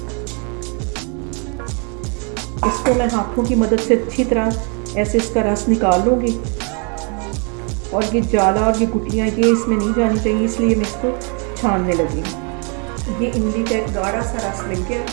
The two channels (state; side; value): quieter; left; 36.7 dB